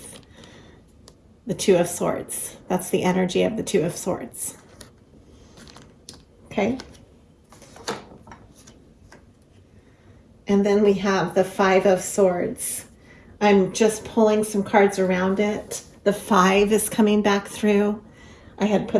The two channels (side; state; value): both; identical; correlation 1.00